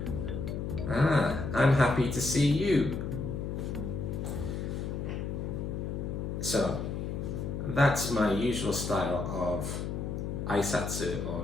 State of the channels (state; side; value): noise; left; hum, 3 dB below the sound